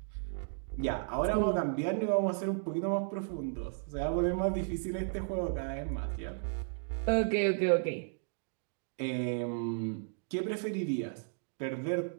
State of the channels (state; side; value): silent; left; digital silence